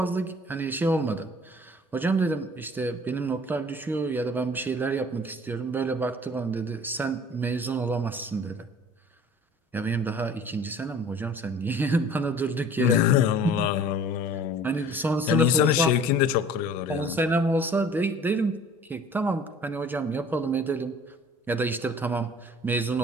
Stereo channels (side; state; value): both; normal; correlation 0.49